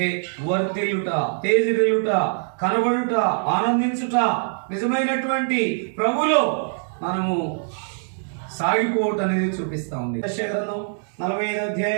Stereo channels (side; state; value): left; silent; digital silence